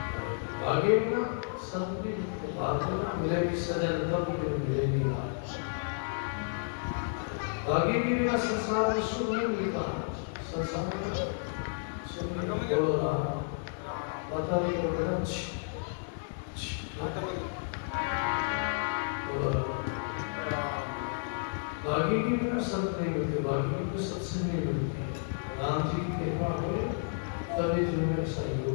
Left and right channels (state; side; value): silent; right; digital silence